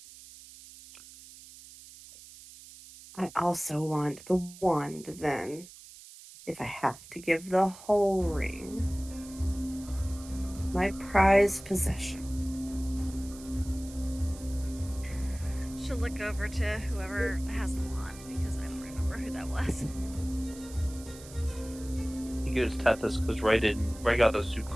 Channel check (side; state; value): right; noise; hiss, 18 dB below the sound